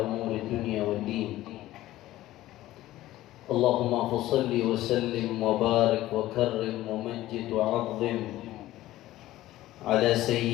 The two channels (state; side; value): quieter; right; 15.5 dB